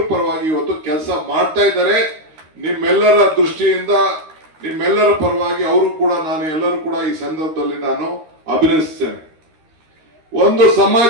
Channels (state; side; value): late; left; 13 ms